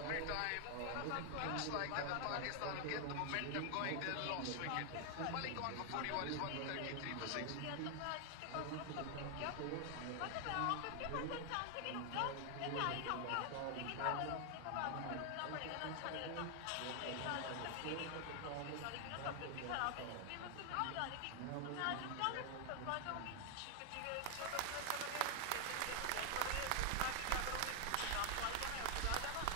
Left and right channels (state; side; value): different; both; correlation 0.00